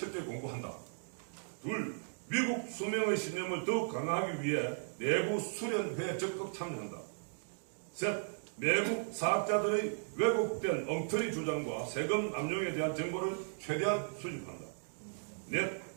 공부한다. 둘, 미국 수명의 신념을 더욱 강화하기 위해 내부 수련회에 적극 참여한다. 셋, 외국 사학자들의 왜곡된 엉터리 주장과 세금 남용에 대한 정보를 최대한 수집한다. 넷,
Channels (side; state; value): left; silent; digital silence